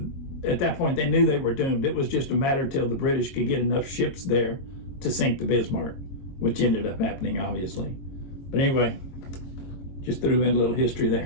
at that point, they knew they were doomed. It was just a matter till the British could get enough ships there to sink the Bismarck, which ended up happening, obviously. But anyway, just threw in a little history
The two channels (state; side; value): late; right; 22 ms